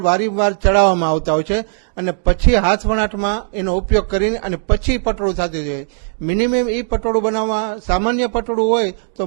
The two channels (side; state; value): left; silent; 68 dB below the other